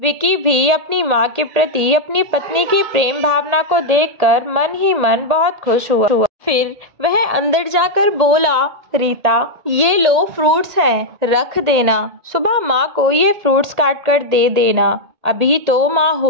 विकी भी अपनी माँ के प्रति अपनी पत्नी की प्रेम भावना को देखकर मन ही मन बहुत खुश हुआ। फिर वह अंदर जाकर बोला, रीता ये लो फ्रूट्स हैं, रख देना। सुबह माँ को ये फ्रूट्स काट कर दे देना, अभी तो माँ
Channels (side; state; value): left; late; 1.8 ms